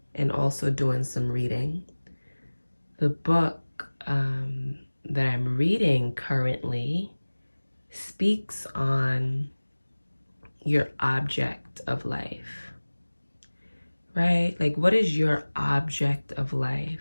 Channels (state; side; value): inverted; both; correlation -1.00